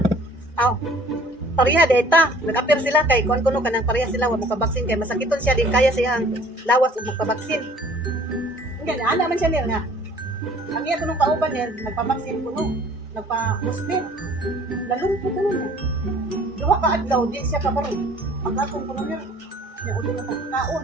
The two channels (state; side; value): normal; both; correlation 0.53